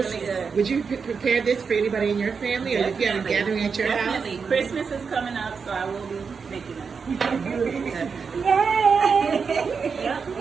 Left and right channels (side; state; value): left; quieter; 5.6 dB